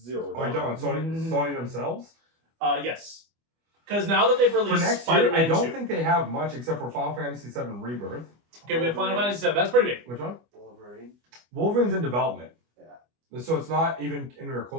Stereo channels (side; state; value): left; late; 25 ms